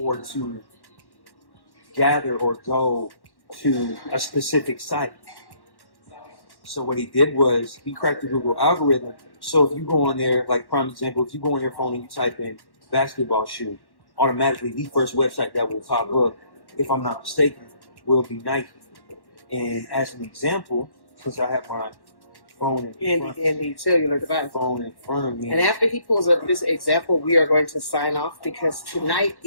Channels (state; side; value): late; right; 1.1 ms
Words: to gather or go to a specific site. So what he did was he cracked the Google algorithm. So if you go on there, like prime example, if you go on your phone and you type in basketball shoe, automatically the first website that will pop up, if I'm not mistaken, will be Nike. And as an example, since I have my phone in the cellular device. Phone in front of me. And after he pulls up this example, we are going to sign off because tonight